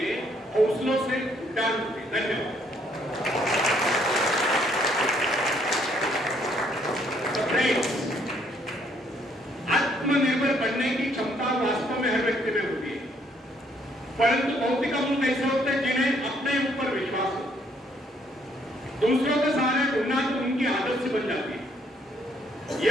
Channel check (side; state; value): both; normal; correlation 0.67